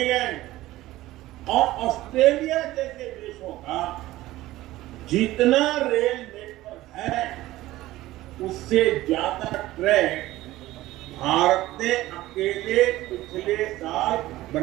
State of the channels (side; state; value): left; quieter; 16.5 dB